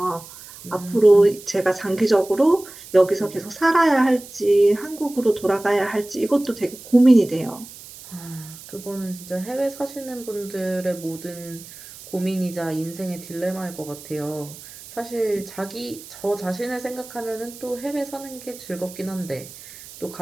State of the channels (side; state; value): right; noise; hiss, 17 dB below the sound